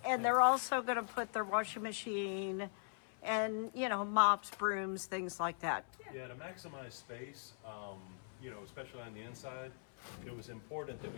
And they're also going to put their washing machine and, mops, brooms, things like that. Yeah, to maximize space, especially on the inside, it was important that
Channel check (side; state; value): right; silent; 51 dB below the other